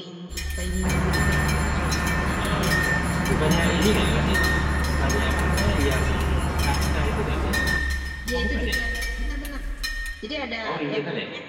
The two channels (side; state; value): both; identical; correlation 1.00